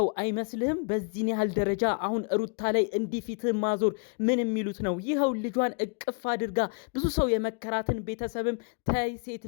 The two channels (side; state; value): right; quieter; 39.0 dB